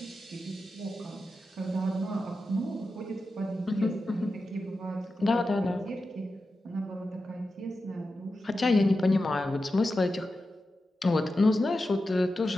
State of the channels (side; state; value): both; normal; correlation 0.91